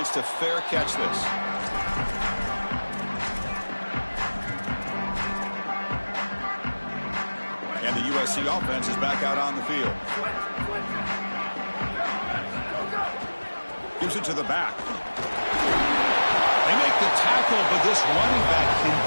to fair catch this. And the USC offense is back out on the field. Gives it to the back. They make the tackle, but this running back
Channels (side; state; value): both; inverted; correlation -1.00